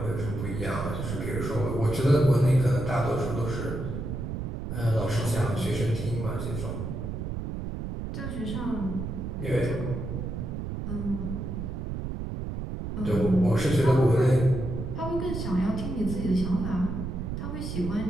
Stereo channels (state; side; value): noise; right; rumble, 5 dB below the sound